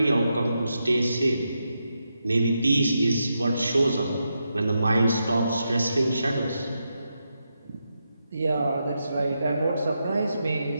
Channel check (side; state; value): both; inverted; correlation -0.85